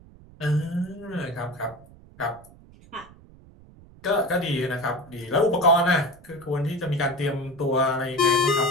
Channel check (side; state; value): right; noise; rumble, 23 dB below the sound